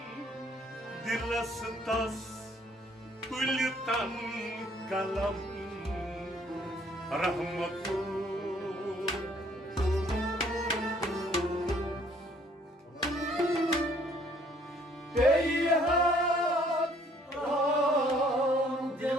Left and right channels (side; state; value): both; normal; correlation 0.62